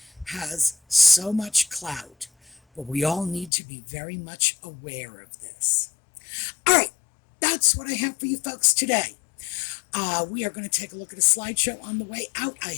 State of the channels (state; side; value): drops out; right; at 3.5 s